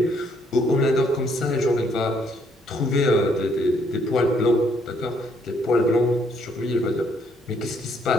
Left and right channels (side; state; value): both; normal; correlation 0.69